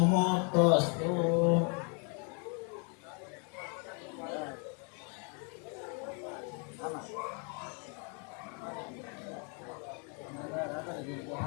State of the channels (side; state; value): right; quieter; 37.7 dB